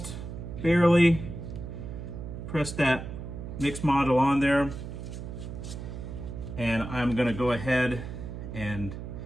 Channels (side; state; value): right; noise; hum, 8 dB below the sound